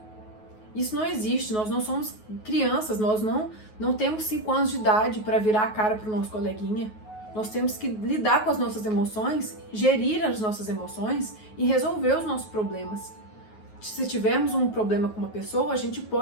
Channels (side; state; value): right; late; 9.4 ms